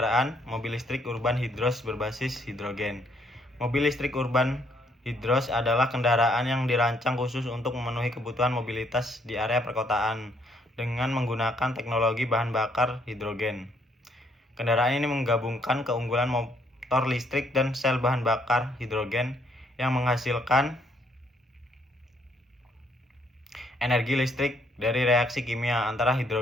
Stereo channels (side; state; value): both; normal; correlation 0.69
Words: mobil listrik urban hidros berbasis hidrogen. Mobil listrik urban hidros adalah kendaraan yang dirancang khusus untuk memenuhi kebutuhan mobilitas di area perkotaan dengan menggunakan teknologi bahan bakar hidrogen. Kendaraan ini menggabungkan keunggulan motor listrik dan sel bahan bakar hidrogen yang menghasilkan energi listrik dari reaksi kimia antara